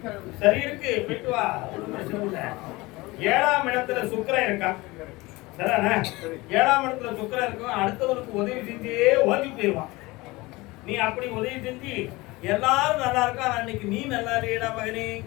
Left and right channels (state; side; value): quieter; right; 21.9 dB